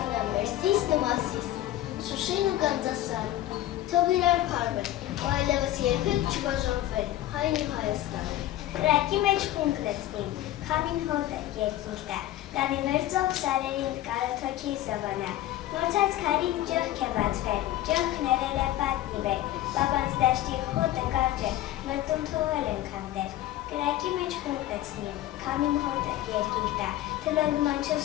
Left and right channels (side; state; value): right; quieter; 14.2 dB